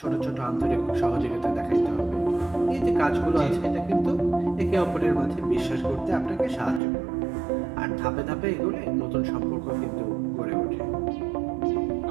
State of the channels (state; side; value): drops out; left; at 6.8 s